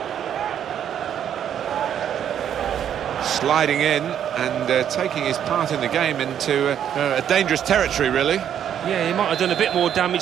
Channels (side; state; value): left; quieter; 9.5 dB